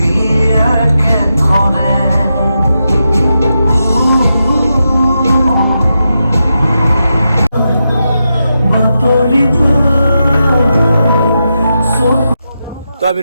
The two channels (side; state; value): both; inverted; correlation -0.87